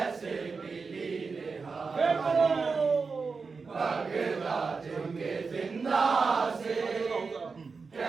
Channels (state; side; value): quieter; left; 4.7 dB